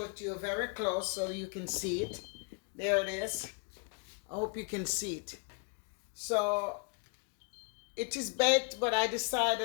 it to you very close so you can see it. There it is. I hope you can see it. So it is baked, but I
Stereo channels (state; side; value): quieter; right; 37.4 dB